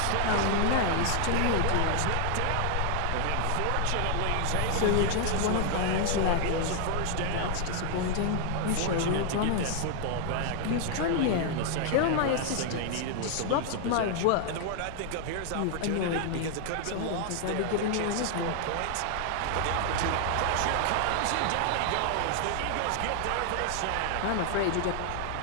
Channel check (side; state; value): both; different; correlation 0.00